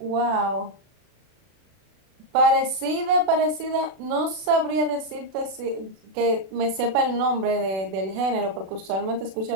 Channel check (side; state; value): left; late; 36 ms